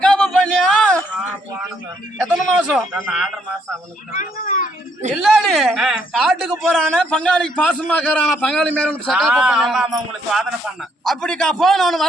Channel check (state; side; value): normal; both; correlation 0.71